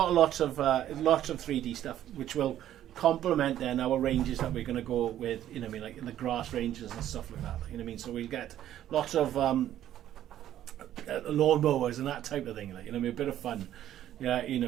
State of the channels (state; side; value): quieter; left; 11.9 dB